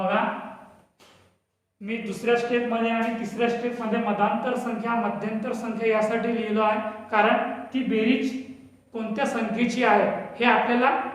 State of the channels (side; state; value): both; identical; correlation 1.00